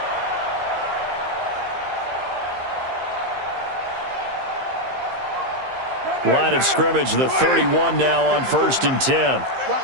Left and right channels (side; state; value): left; late; 15 ms